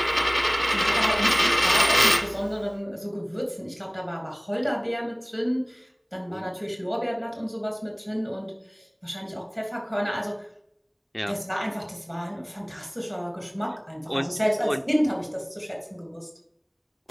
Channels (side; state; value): both; identical; correlation 1.00